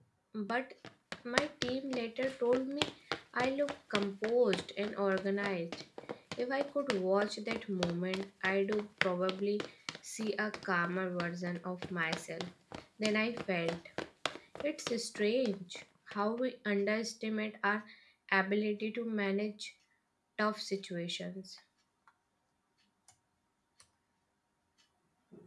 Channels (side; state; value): both; identical; correlation 1.00